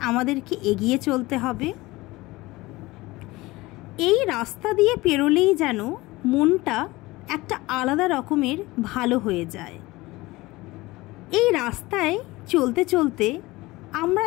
আমাদেরকে এগিয়ে চলতে হবে। এই রাস্তা দিয়ে পেরোলেই যেন মনটা একটা আলাদা রকমের ভালো হয়ে যায়। এই রাস্তায় চলতে চলতে আমরা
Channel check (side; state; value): right; quieter; 20.4 dB